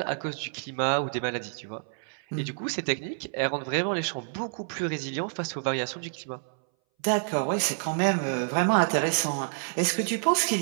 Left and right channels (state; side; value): silent; left; 59 dB below the other